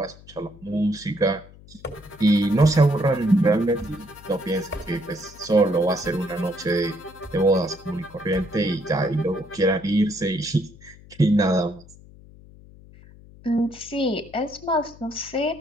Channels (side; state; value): left; noise; hum, 22 dB below the sound